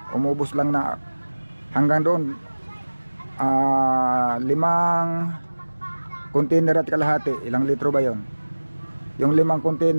umubos lang na hanggang doon 5 container at kalahati. Ilang litro ba yun? Yung 5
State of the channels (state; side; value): inverted; both; correlation -1.00